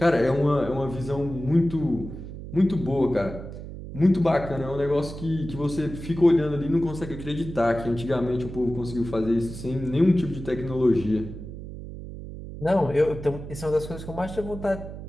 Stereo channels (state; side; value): noise; right; hum, 11 dB below the sound